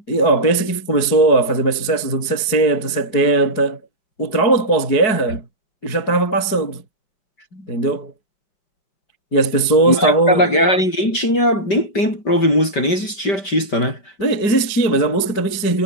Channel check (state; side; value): late; right; 4.7 ms